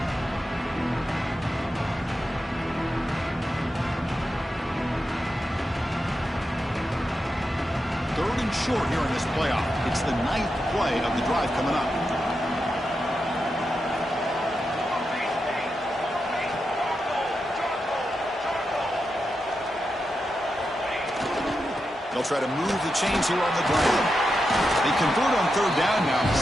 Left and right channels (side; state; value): both; normal; correlation 0.88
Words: Third and short here in this playoff. It's the 9th play of the drive coming up. They'll try to move the chains here on the ground. They convert on third down now.